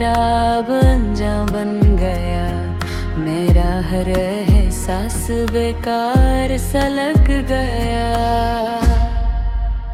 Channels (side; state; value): both; identical; correlation 1.00